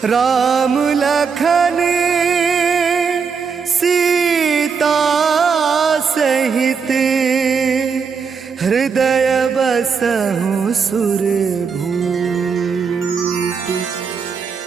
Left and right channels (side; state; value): left; quieter; 5.8 dB